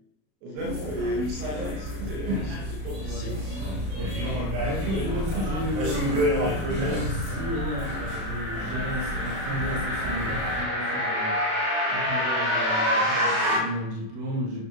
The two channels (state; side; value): late; left; 36 ms